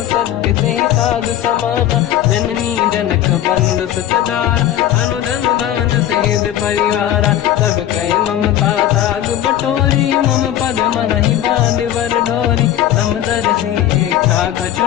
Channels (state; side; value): quieter; right; 11.8 dB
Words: सत्य ते साधु समाना जननी जनक बंधु सुतदार अनुधन भवन सहित परिवारा सब कहे ममता दाग बटोरी मम पद मन ही बांध वर डोरी समदर्शी इच्छा कछु